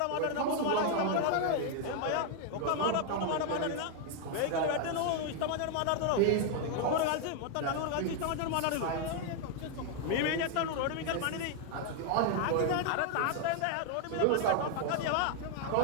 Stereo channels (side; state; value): both; different; correlation 0.00